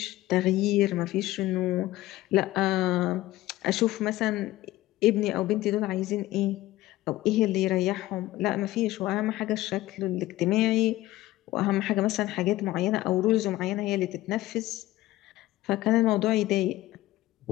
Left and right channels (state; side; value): quieter; right; 16.7 dB